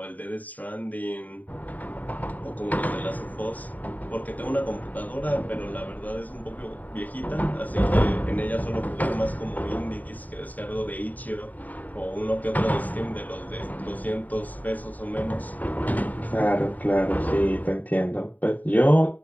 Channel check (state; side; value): late; right; 0.077 ms